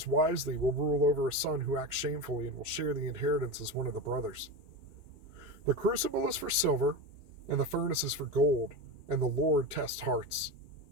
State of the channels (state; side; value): late; left; 2.4 ms